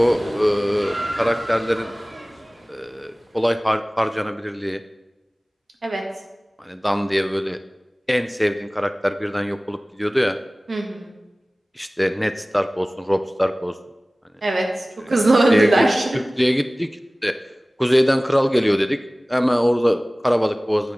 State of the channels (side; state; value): both; normal; correlation 0.98